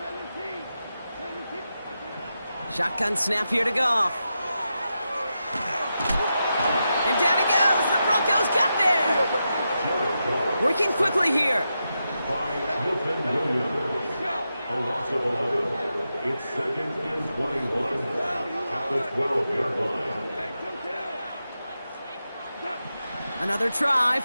Shotgun snap here to Goff. And down he goes. The Broncos got there. Working quickly here. By Milton Williams. A loss of 11. It's second and 21 at the 12-yard line. Another try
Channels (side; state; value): both; inverted; correlation -0.88